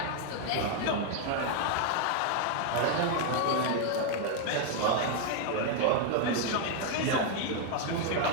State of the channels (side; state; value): both; different; correlation 0.01